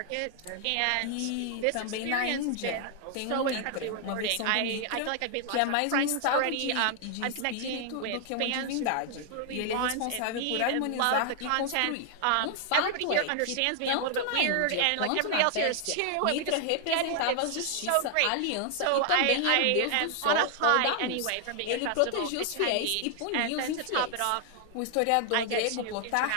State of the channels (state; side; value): different; both; correlation 0.00